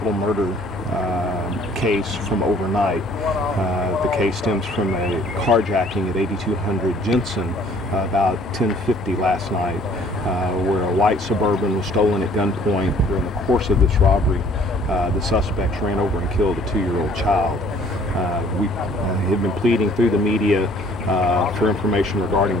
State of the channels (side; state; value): both; normal; correlation 0.56